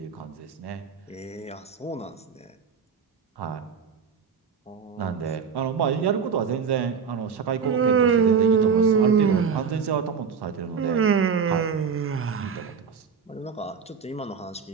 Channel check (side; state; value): left; quieter; 6.3 dB